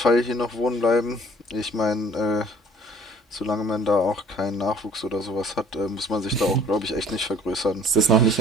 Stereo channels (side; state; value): both; normal; correlation 0.55